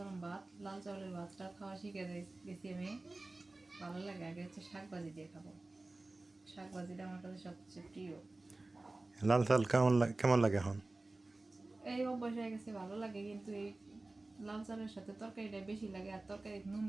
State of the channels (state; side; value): quieter; left; 3.0 dB